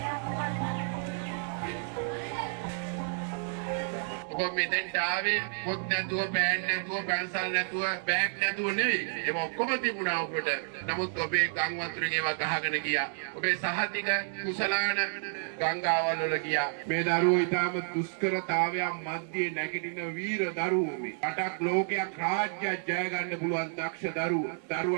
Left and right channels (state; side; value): silent; left; 57 dB below the other